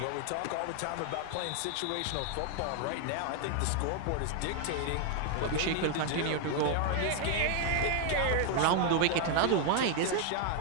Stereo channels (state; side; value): different; both; correlation 0.00